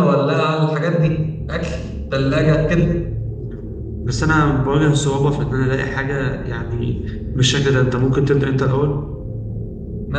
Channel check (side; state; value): both; identical; correlation 1.00